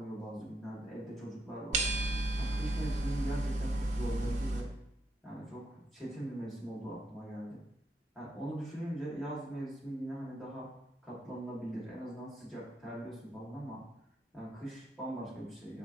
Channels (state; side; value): normal; both; correlation 0.79